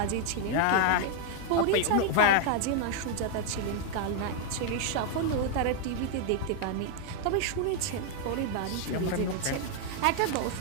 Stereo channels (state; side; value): different; both; correlation 0.00